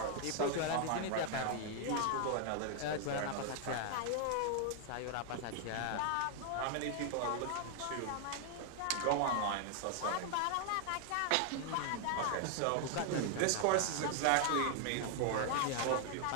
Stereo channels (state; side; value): different; both; correlation 0.00